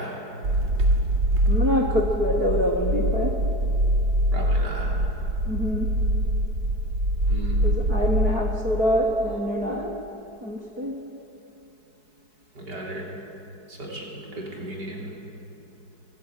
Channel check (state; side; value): late; left; 4.7 ms